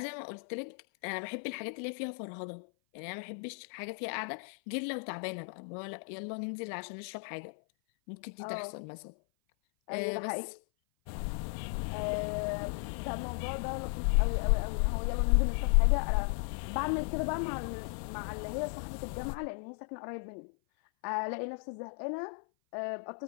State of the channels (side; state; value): right; silent; 54 dB below the other